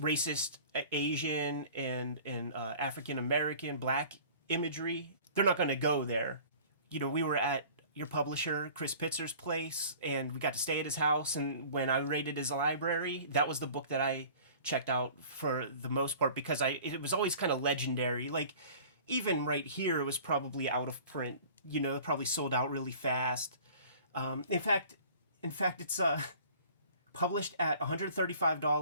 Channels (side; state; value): both; inverted; correlation -0.46